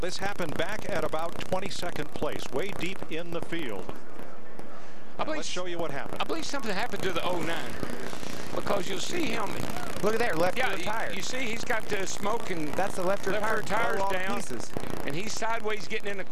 happened back at about 22nd place, way deep in the field. Let's show you what happened. I believe something happened to the 09 because you'll see him. Look at there, left rear tire. You see he's got the smoke and that's the left rear tires down. And he's sideways getting in the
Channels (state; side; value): identical; both; correlation 1.00